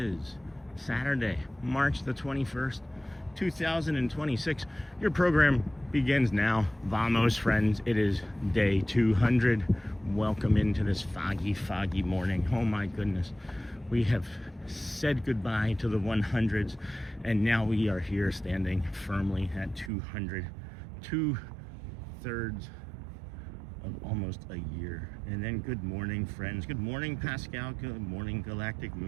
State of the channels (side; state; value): left; drops out; at 19.9 s